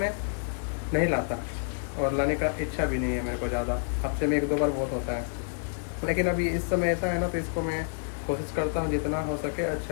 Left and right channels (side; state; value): right; silent; digital silence